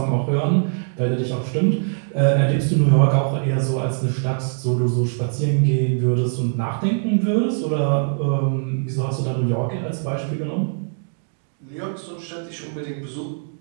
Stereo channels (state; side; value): silent; left; digital silence